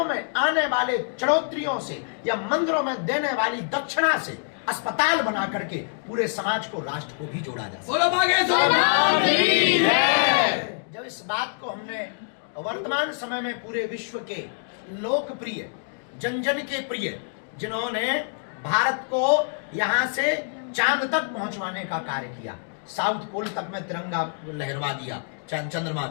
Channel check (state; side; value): silent; right; digital silence